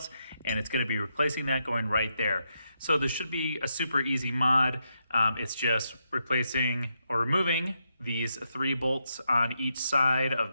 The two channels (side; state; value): both; inverted; correlation -0.82